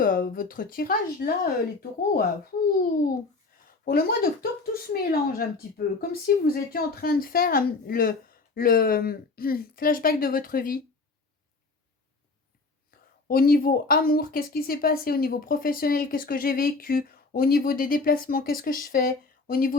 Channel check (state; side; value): quieter; right; 3.8 dB